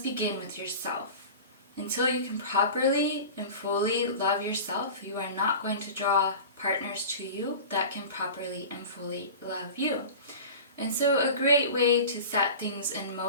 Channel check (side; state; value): both; inverted; correlation -0.34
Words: begin with yourself. Until you can properly and fully love yourself, you are not going to draw partners to you that can properly and fully love you. And so a great way to set things in